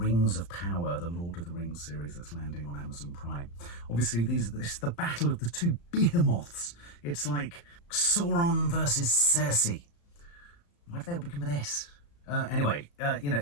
of Power, the Lord of the Rings series that's landing on Amazon Prime. Obviously, this is the battle of the two behemoths. It's like Sauron versus Cersei. Why do they all begin with S? Anyway, you know,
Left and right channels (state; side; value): late; right; 35 ms